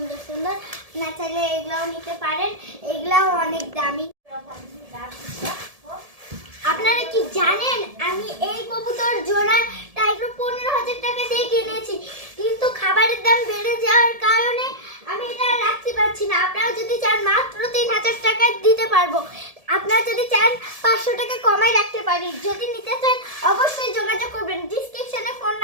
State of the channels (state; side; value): late; left; 1.7 ms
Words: সুন্দর। না চাইলে এগুলাও নিতে পারেন, এগুলাও অনেক দামি। আপনারা কি জানেন আমি এই কবুতর জোড়াটা একটু 15,000 টাকা দিয়ে কিনেছি, কিন্তু খাবারের দাম বেড়ে যাওয়ার কারণে আমি এটা রাখতে পারছি না। আপনারা যদি চান মাত্র 3,000 টাকা দিতে পারবো। আপনারা যদি চান 500 টাকা কমাই রাখতে পারি। যদি নিতে চান অবশ্যই যোগাযোগ করবেন, ডিসক্রিপশনে ফোন